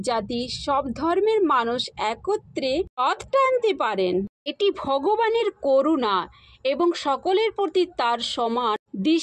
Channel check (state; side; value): identical; both; correlation 1.00